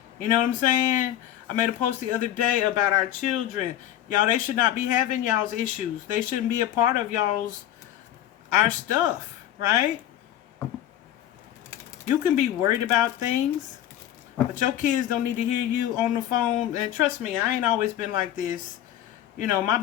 You know what I'm saying? I made a post the other day about our children. Y'all, they should not be having y'all's issues. They shouldn't be a part of our stuff, right? You can be worried about things, but your kids don't need to hear you on the phone. And trust me, I ain't always been like this. You know, my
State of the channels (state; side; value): quieter; right; 12.2 dB